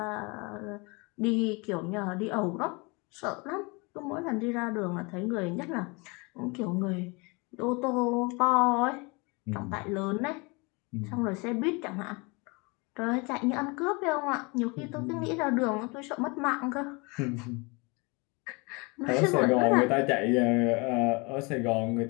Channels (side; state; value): right; quieter; 28.4 dB